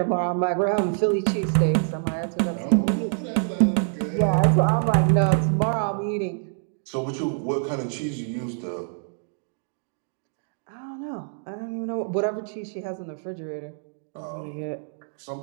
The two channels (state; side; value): silent; left; digital silence